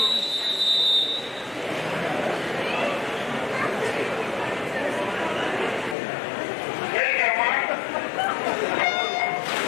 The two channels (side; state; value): right; drops out; at 6.0 s